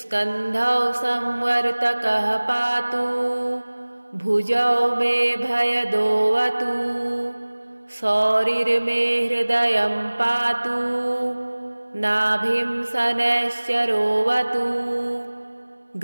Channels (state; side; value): inverted; both; correlation -1.00